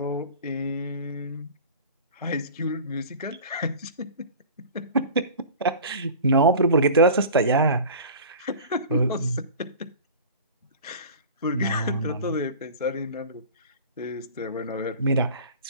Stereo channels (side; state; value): both; inverted; correlation -0.38